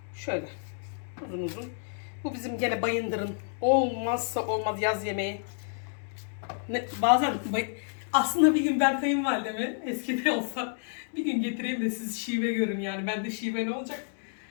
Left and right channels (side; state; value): right; silent; 58 dB below the other